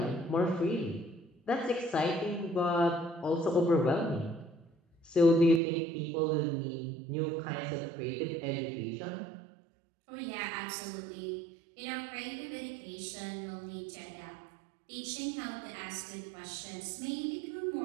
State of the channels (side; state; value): left; drops out; at 5.6 s